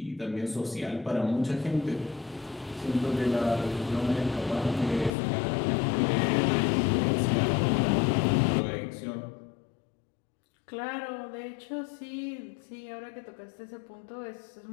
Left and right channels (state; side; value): drops out; right; at 5.1 s